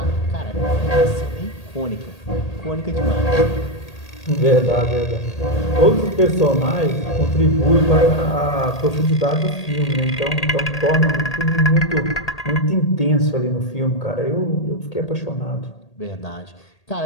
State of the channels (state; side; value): late; right; 1.8 ms